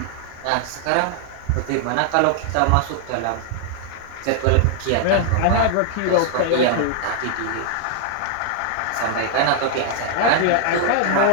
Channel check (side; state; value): both; different; correlation 0.00